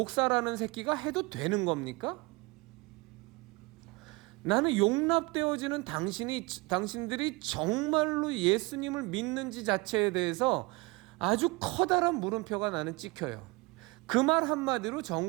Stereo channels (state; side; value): quieter; left; 25.1 dB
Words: 새끼가 해도 되는 겁니까? 나는 용납되어지는 당신들이 정말로 예수님을 믿는지 자체에 대해서 아주 커다란 물음표가 나는 찍혀요. 그 말 한마디로